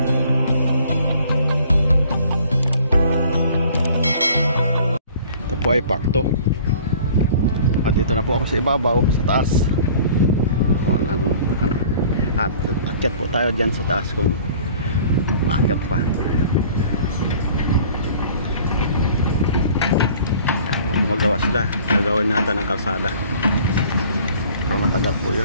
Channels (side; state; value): both; inverted; correlation -0.50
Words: Ito po ay pakto. At dito na po ako sa ibabaw, sa taas. At akyat po tayo dyan sa taas kung maakyat pa. Kung gumagawa sila, gagawin natin ng kalsada. Pero matagal po